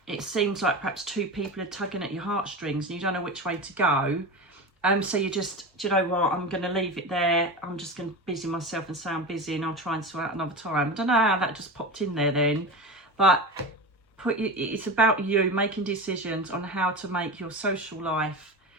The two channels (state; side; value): normal; both; correlation 0.25